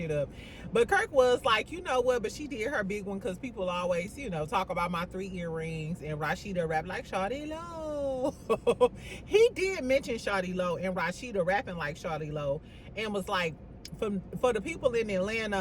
up. But Kirk was like, you know what, but she did her big one, because people always, you know, talk about my 3 earrings, and Rasheeda rap like Shawty Lo. He did mention Shawty Lo and Rasheeda rapping like Shawty Lo, and was like, for the people in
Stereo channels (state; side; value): identical; both; correlation 1.00